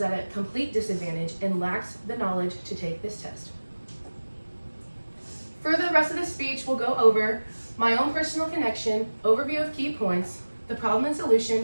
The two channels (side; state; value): both; inverted; correlation -1.00